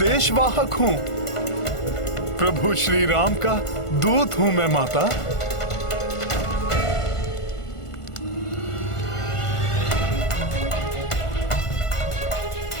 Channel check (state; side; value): late; right; 1.5 ms